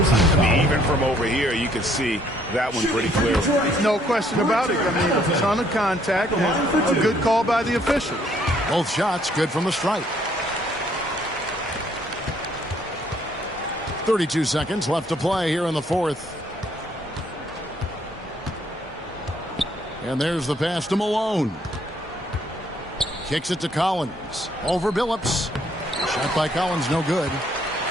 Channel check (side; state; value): both; normal; correlation 0.66